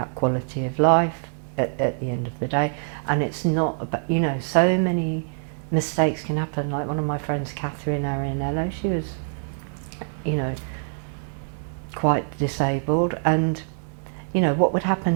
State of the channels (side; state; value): left; silent; digital silence